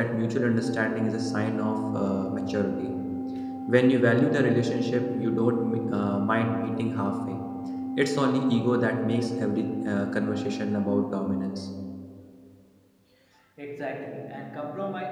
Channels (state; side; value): identical; both; correlation 1.00